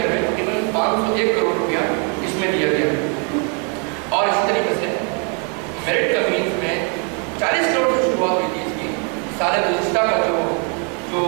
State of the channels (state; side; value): quieter; left; 37.7 dB